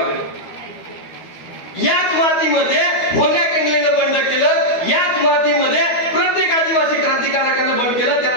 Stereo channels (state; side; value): late; right; 12 ms